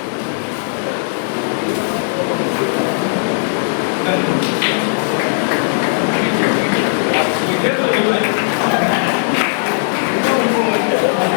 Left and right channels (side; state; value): right; silent; digital silence